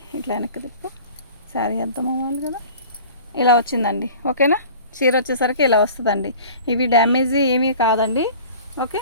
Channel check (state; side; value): inverted; both; correlation -0.43